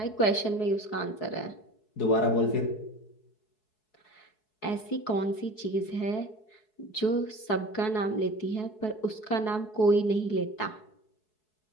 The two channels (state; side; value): late; right; 4.7 ms